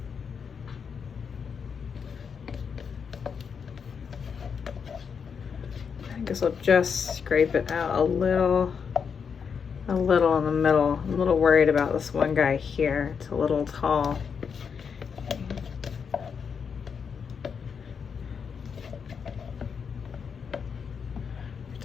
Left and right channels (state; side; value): quieter; right; 6.4 dB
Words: guess I'll just scrape it out a little in the middle. I'm a little worried about this one guy here. It's a little tall. Have